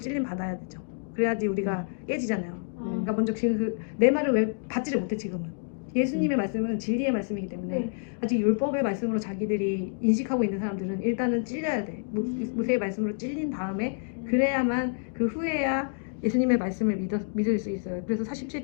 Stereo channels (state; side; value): silent; right; digital silence